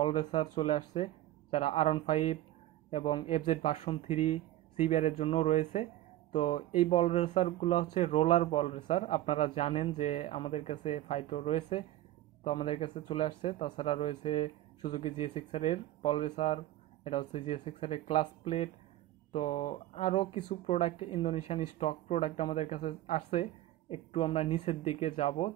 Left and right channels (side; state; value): left; quieter; 14.6 dB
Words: রেসার চলে আসছে, যারা R15 এবং এফজেড ভার্সন 3 সিবিআর এর জন্য রয়েছে। তো এই বল রেসারগুলো হচ্ছে রোলার বল রেসার। আপনারা জানেন যে আমাদের কাছে ফাইটো রয়েছে, তো আমাদের কাছে চলে আসছে। তাছাড়া রয়েছে সুজুকি জিএস6 এর বল রেসার, এটা হচ্ছে জিএস6 এর ক্লাস প্লেট। তো আরও কিছু প্রোডাক্ট ইন্দোনেশিয়ান স্টক প্রোডাক্ট আমাদের কাছে আসছে। একটু আমরা নিচের দিকে যাব,